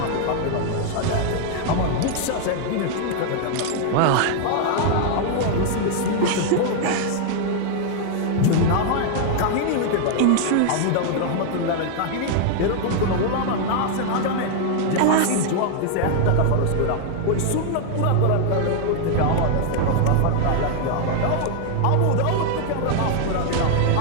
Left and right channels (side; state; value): both; different; correlation 0.00